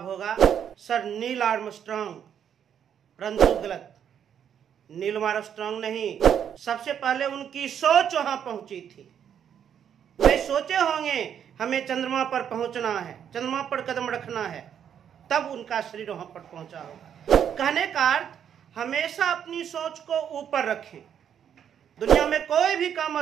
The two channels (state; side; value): quieter; left; 8.7 dB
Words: होगा सर नील आर्मस्ट्रांग, परंतु गलत। नील आर्मस्ट्रांग नहीं, सबसे पहले उनकी सोच वहां पहुंची थी। वे सोचे होंगे हमें चंद्रमा पर पहुंचना है, चंद्रमा पर कदम रखना है, तब उनका शरीर वहां पर पहुंचा होगा। कहने का अर्थ हमेशा अपनी सोच को ऊपर रखें। दुनिया में कोई भी काम